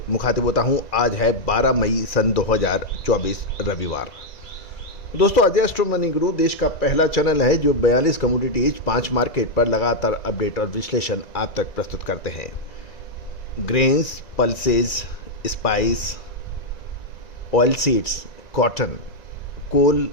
मुखातिब होता हूं। आज है 12 मई सन 2024 रविवार। दोस्तों, अजय एस्ट्रोमनी ग्रुप देश का पहला चैनल है जो 42 कमोडिटीज 5 मार्केट पर लगातार अपडेट और विश्लेषण आप तक प्रस्तुत करते हैं। Grains, pulses, spice, oil seeds, cotton, coal,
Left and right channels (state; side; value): late; right; 1.9 ms